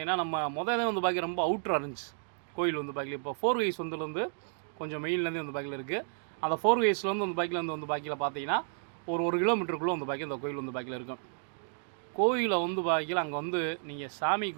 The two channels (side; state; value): left; silent; digital silence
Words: நம்ம முதல்ல வந்து பாக்கிய ரொம்ப அவுட்ராக இருந்துச்சு கோயில் வந்து பாக்கியில். இப்போ 4 வேஸ் வந்துலேருந்து கொஞ்சம் மெயின்லேருந்து வந்து பாக்கியில் இருக்குது. அந்த 4 வேஸ்லேருந்து வந்து பாக்கியில் வந்து பாக்கியில் பார்த்தீங்கன்னா ஒரு கிலோமீட்டருக்குள்ளே வந்து பாக்கிய இந்த கோயில் வந்து பாக்கியில் இருக்கும். கோயிலை வந்து பாக்கியில் அங்கே வந்து நீங்கள் சாமி